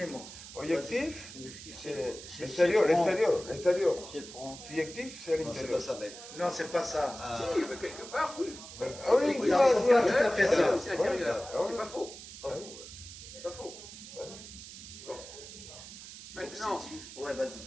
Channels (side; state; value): right; noise; hiss, 14 dB below the sound